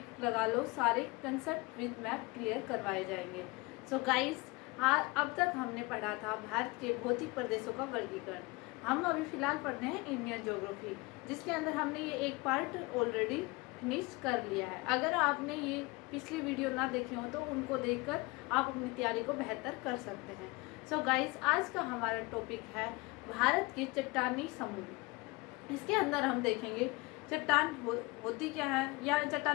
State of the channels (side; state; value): right; quieter; 24.5 dB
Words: लगा लो, सारे कंसेप्ट विद मैप क्लियर करवाए जाएंगे। सो गाइस, अब तक हमने पढ़ा था भारत के भौतिक प्रदेशों का वर्गीकरण। हम अभी फ़िलहाल पढ़ रहे हैं इंडियन ज्योग्राफी, जिसके अंदर हमने ये एक पार्ट ऑलरेडी फिनिश कर लिया है। अगर आपने ये पिछली वीडियो ना देखी हो तो उनको देखकर आप अपनी तैयारी को बेहतर कर सकते हैं। सो गाइस, आज का हमारा टॉपिक है भारत के चट्टानी समूह। इसके अंदर हम देखेंगे चट्टान होती क्या है, या